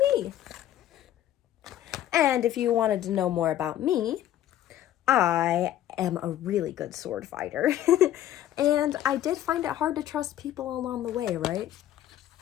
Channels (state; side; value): quieter; right; 12.3 dB